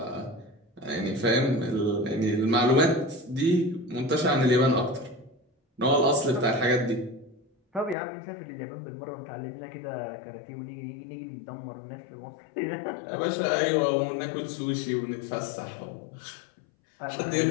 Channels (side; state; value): right; drops out; at 8.0 s